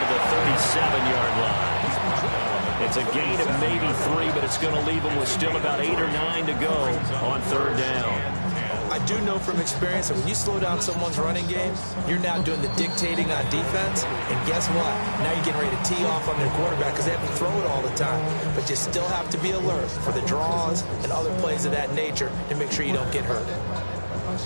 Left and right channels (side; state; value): both; inverted; correlation -1.00